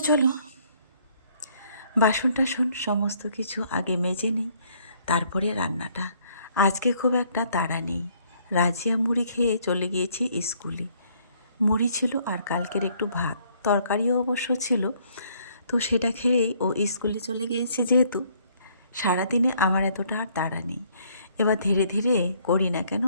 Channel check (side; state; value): both; inverted; correlation -0.65